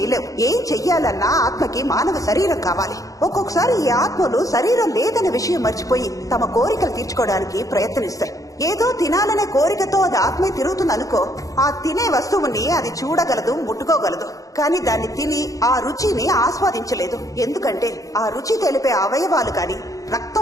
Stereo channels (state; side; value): late; right; 0.17 ms